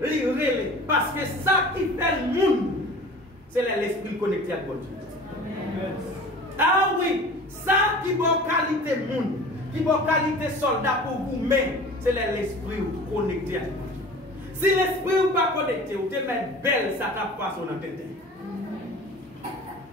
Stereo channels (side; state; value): both; normal; correlation 0.41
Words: il relait. Parce que ça qui fait le monde, c'est l'esprit connecté avec mon Dieu. Ah oui, ça qui va qualité monde, qui va qualité soldat pour vous, mais c'est l'esprit connecté avec mon Dieu. Si l'esprit n'est pas connecté, vous te mettez belle, ça tape pas sur la tête.